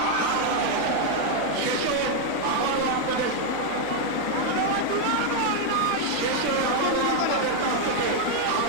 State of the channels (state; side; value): different; both; correlation 0.00